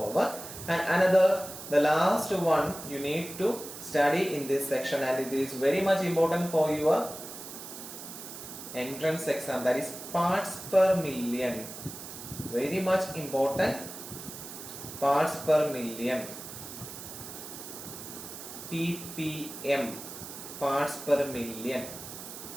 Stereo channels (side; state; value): right; noise; hiss, 11 dB below the sound